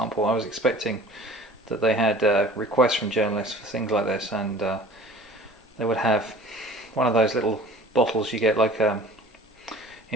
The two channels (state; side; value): normal; both; correlation 0.46